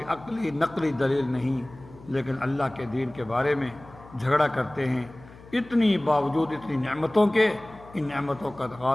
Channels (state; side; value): noise; left; hum, 21 dB below the sound